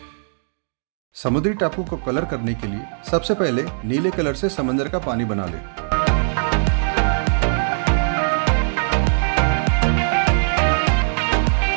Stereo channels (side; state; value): left; silent; digital silence